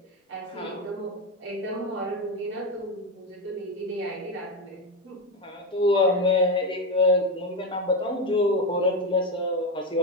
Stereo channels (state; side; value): normal; both; correlation 0.12